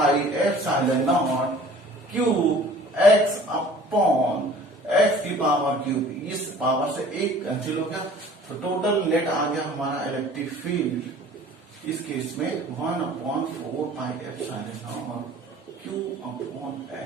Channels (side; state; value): both; normal; correlation 0.49